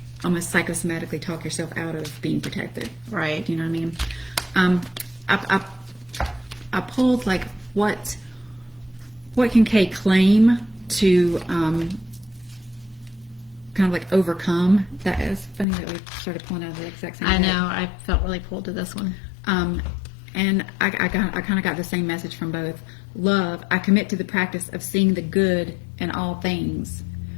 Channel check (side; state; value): right; drops out; at 15.7 s